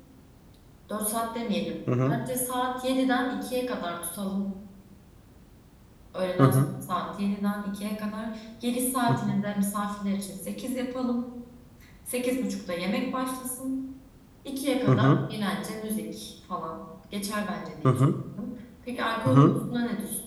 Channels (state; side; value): identical; both; correlation 1.00